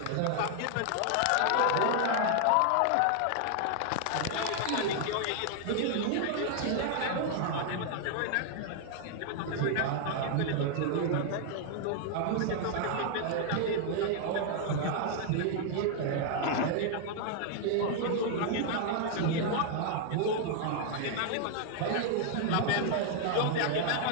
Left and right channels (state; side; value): different; both; correlation 0.00